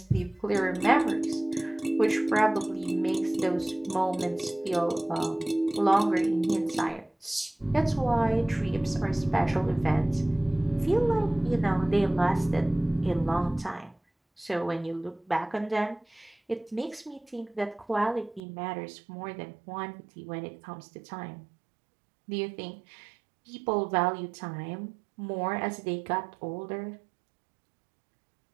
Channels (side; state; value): left; drops out; at 18.4 s